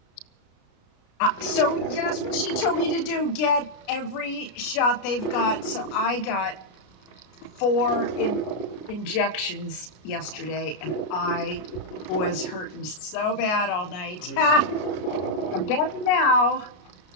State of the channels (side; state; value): right; late; 33 ms